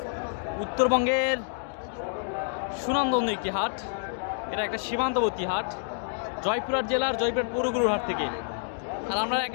উত্তরবঙ্গের সুনামধন্য একটি হাট। এটা একটা সীমান্তবর্তী হাট, জয়পুরহাট জেলার জয়পুরহাট পৌরগুরুর হাট থেকে। আর আমরা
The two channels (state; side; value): silent; right; digital silence